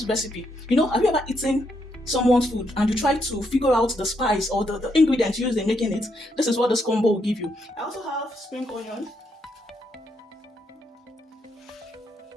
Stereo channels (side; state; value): both; normal; correlation 0.77